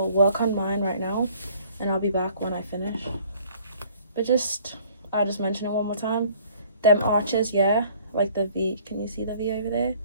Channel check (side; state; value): both; inverted; correlation -0.56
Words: work on mine right now, and I'll be back when I finish. But I'll just mention it one more time. Them arches, yeah, like the V, can you see the V over there?